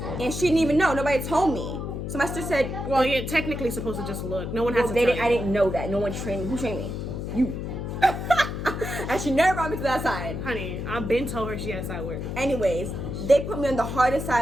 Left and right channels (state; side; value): noise; left; hum, 5 dB below the sound